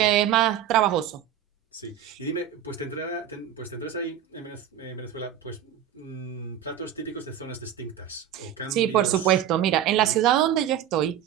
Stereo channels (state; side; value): quieter; left; 10.3 dB